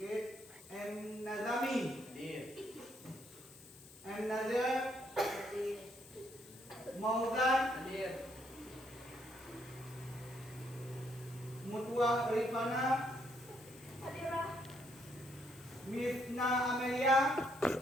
M Nazami, M Nazir, Mauzan, Mutua Rifana, Misna Amelia,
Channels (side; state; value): left; noise; hiss, 20 dB below the sound